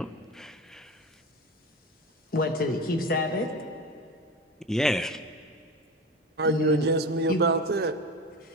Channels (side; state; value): both; normal; correlation 0.28